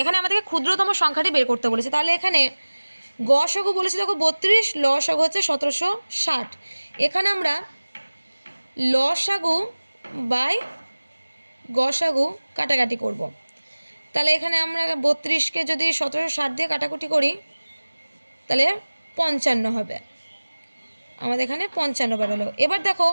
এখানে আমাদেরকে ক্ষুদ্রতম সংখ্যাটি বের করতে বলেছে। তাহলে এখানে গসাগু বলেছি দেখো 32, লসাগু হচ্ছে 1760। এখানে আমরা লসাগু বাই গসাগু কাটাকাটি করব। তাহলে এখানে আমরা 32কে যদি 1760 দিয়ে কাটাকুটি করি তাহলে 55 হবে, আমাদের এখানে 55 বেরোলো। এবার দেখো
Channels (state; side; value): inverted; both; correlation -1.00